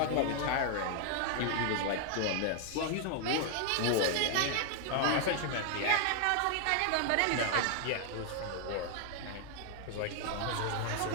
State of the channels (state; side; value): different; both; correlation 0.00